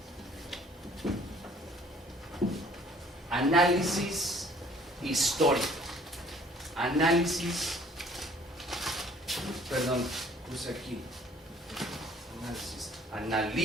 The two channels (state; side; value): normal; both; correlation 0.55